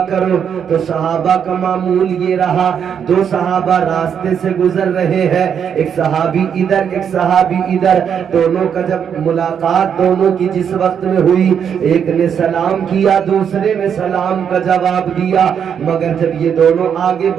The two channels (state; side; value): quieter; left; 7.8 dB